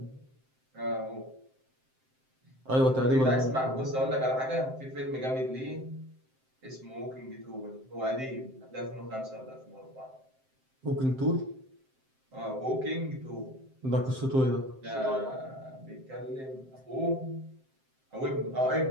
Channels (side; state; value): left; late; 7.6 ms